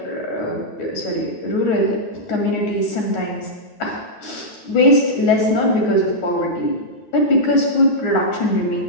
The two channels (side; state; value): right; late; 9.4 ms